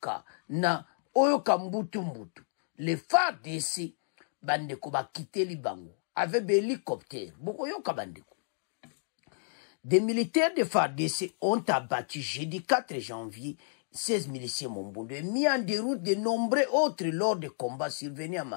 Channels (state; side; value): silent; right; digital silence